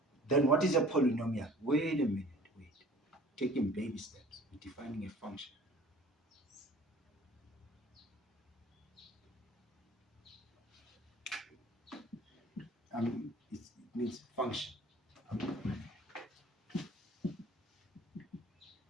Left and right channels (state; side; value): normal; both; correlation 0.49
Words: then what is a polynomial? Wait a minute, wait. Taking baby steps, defining a function. It means function.